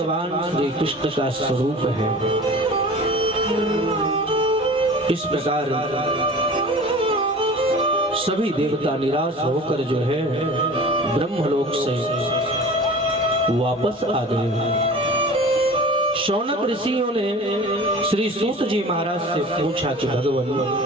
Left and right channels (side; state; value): both; normal; correlation 0.40